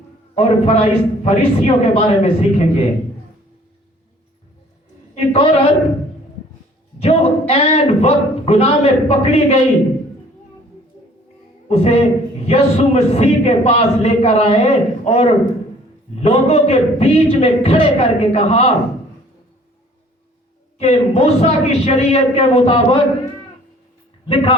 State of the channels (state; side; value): normal; both; correlation 0.55